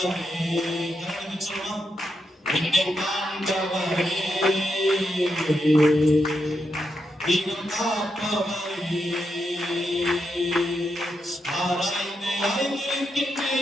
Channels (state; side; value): normal; both; correlation 0.83